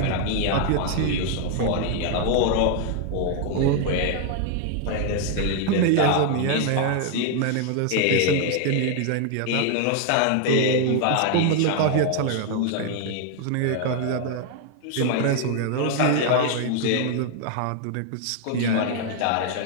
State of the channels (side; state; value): both; different; correlation 0.00